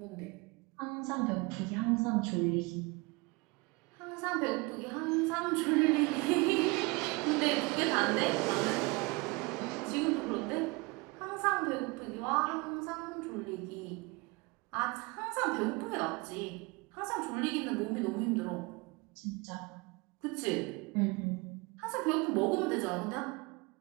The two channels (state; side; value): quieter; left; 26.1 dB